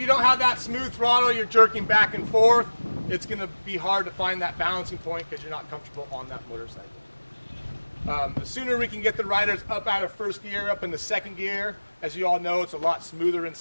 don't have that smooth throttle, you're jerking back and forth, it's going to be hard to find that balancing point because you're not comfortable on that motorcycle. The sooner we can get the riders up out of first gear, up into second gear, as you all know, it's a lot smoother in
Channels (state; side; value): inverted; both; correlation -1.00